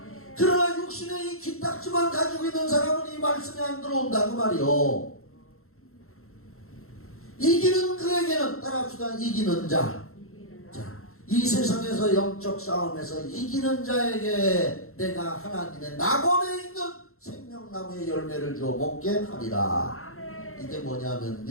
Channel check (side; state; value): right; late; 0.62 ms